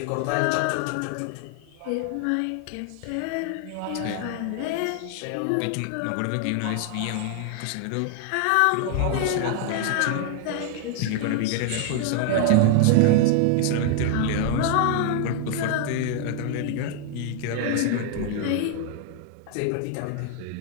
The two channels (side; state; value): both; different; correlation 0.00